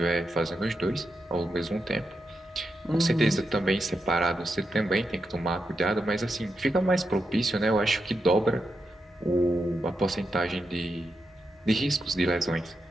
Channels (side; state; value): both; normal; correlation 0.86